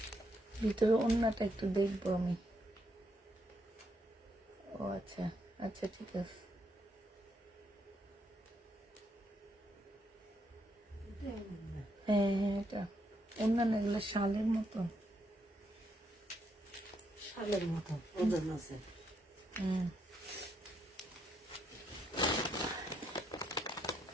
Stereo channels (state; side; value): normal; both; correlation 0.77